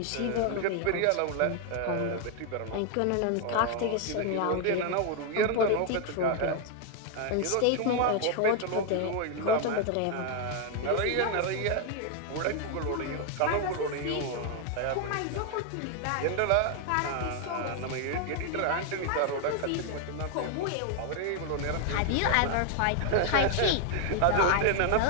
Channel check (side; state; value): both; different; correlation 0.01